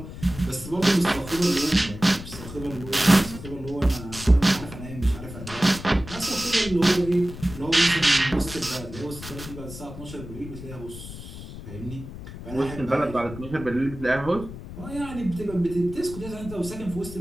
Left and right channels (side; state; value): left; noise; rumble, 12 dB below the sound